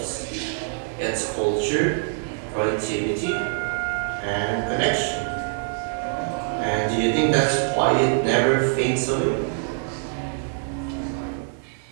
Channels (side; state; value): left; silent; digital silence